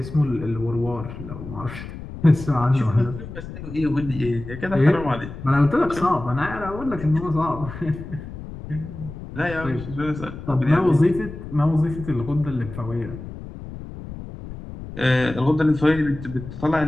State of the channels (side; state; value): left; noise; rumble, 11 dB below the sound